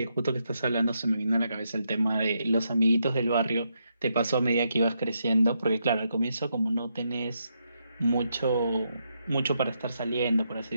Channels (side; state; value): both; inverted; correlation -0.81